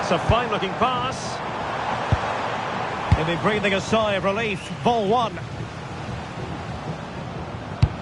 a fine-looking pass. He'll be breathing a sigh of relief. Ball one.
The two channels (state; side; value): identical; both; correlation 1.00